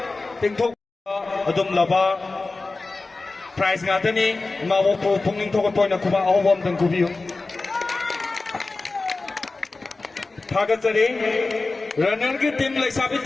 tingthok adum laba prize nga tani mawo po punging thok toy na kuba awom tang kubiyo Thagatsari runner ki team lai sabi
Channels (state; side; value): quieter; right; 3.6 dB